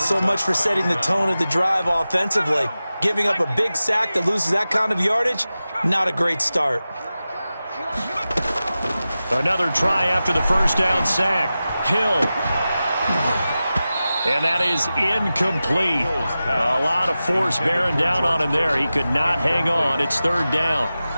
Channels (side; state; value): both; inverted; correlation -0.94